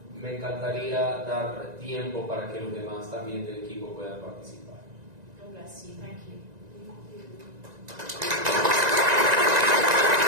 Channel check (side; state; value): left; late; 1.9 ms